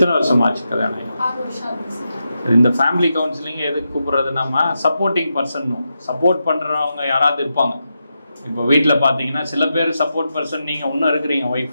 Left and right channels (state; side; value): inverted; both; correlation -0.87